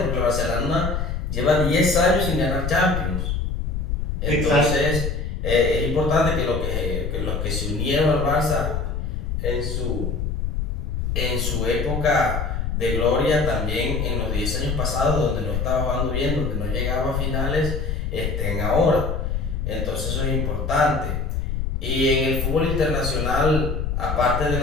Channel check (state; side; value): noise; left; rumble, 2 dB below the sound